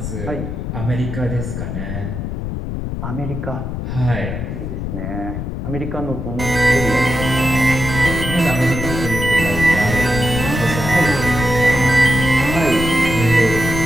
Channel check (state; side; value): noise; left; rumble, 5 dB below the sound